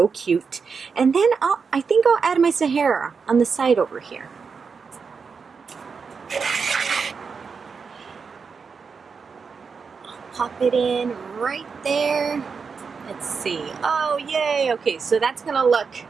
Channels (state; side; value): quieter; left; 5.5 dB